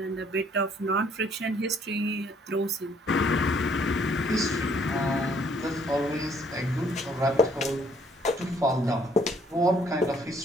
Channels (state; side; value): normal; both; correlation 0.64